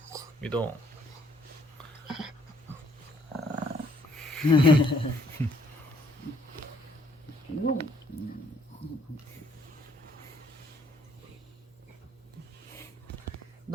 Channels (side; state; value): both; normal; correlation 0.64